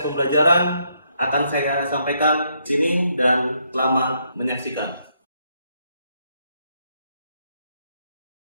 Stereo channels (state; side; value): inverted; both; correlation -0.75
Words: pembelajaran akan saya sampaikan di sini dan selamat menyaksikan.